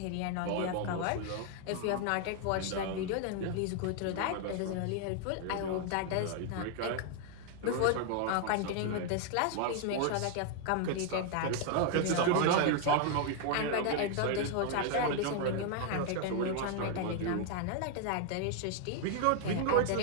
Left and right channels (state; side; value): different; both; correlation 0.00